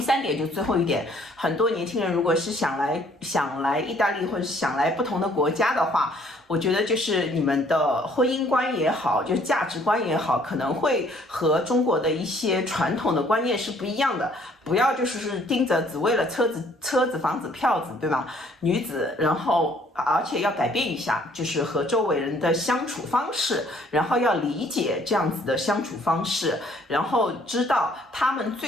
3点就最后一点，很多年轻人如果是想来意大利或者想来不同的国家的话，我觉得就是你们的婚姻观也好，就是价值观也好，可能会和中国的一些传统的观念是不一样的。不要就是盯着只为了车子、房子、票子，对吧？女子，然后而且要改变一下，就是和周围人的相处方式，然后要理解这样子的相处方式，然后知道他们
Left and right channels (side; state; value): both; normal; correlation 0.61